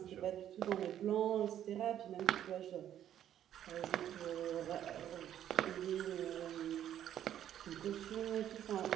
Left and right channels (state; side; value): quieter; left; 10.8 dB